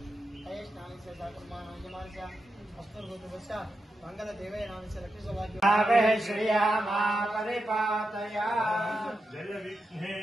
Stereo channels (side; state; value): both; normal; correlation 0.88